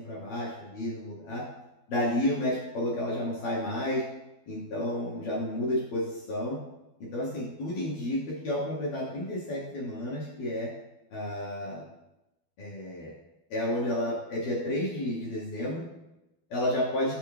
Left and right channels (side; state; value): right; late; 12 ms